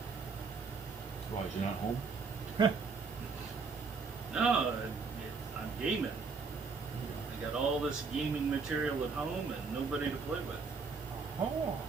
Why, is you not home? No, I'm gaming. I got all this gaming material at home and nobody to play with. Oh.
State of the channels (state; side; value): quieter; left; 4.8 dB